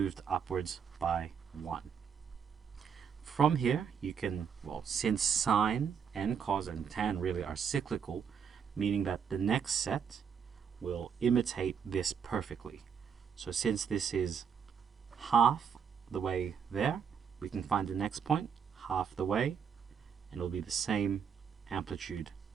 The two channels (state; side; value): quieter; left; 7.1 dB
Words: upwards by 1. From here, you can, well, since sine and cos and tan really are cyclical, meaning that the next set will imitate this perfectly. So since this is half the way there, we can find the next point half the way, and it'll be the same amplitude